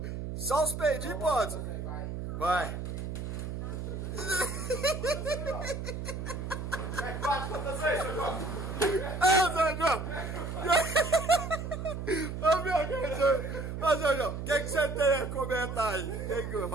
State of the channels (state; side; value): noise; right; hum, 5 dB below the sound